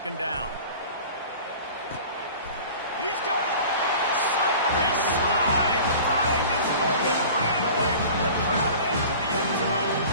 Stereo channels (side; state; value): both; inverted; correlation -0.41